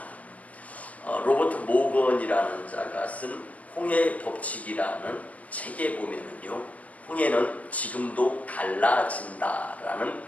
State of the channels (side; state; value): right; late; 0.069 ms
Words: 로버트 모건이라는 자가 쓴 홍해의 법칙이라는 책에 보면은요, 홍해는 지금도 갈라진다라는